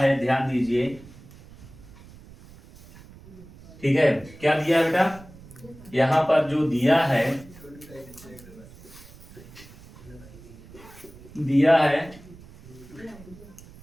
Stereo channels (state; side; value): noise; right; rumble, 20 dB below the sound